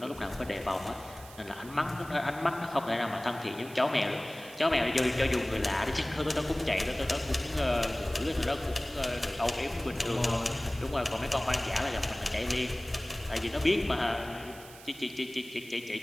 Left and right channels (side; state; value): right; noise; hiss, 18 dB below the sound